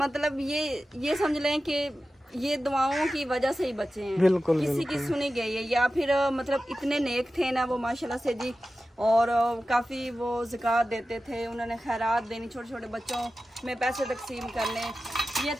ये समझ लें कि ये दुआओं की वजह से ही बचे हैं। बिल्कुल, किसी की सुनी गई है या फिर मतलब इतने नेक थे ना वो माशाल्लाह से जी। और काफ़ी वो ज़कात देते थे, उन्होंने खैरात देनी, छोटे छोटे बच्चों में पैसे तकसीम करने। ये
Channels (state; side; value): normal; both; correlation 0.94